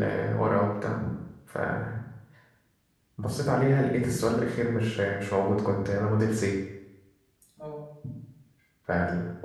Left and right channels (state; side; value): identical; both; correlation 1.00